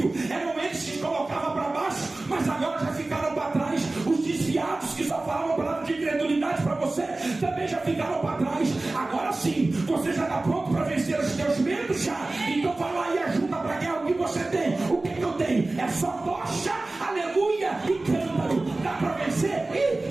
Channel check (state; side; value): quieter; left; 3.0 dB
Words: Eram eles que colocavam para baixo, mas agora já ficaram para trás. Os desviados que só falavam palavra de incredulidade para você também já ficaram para trás. Agora sim, você já está pronto para vencer os teus medos já? Então vai lá e ajuda para guerra. O que você tem? O que eu tenho? É só tocha, aleluia, e cântaro. Dá para vencer? E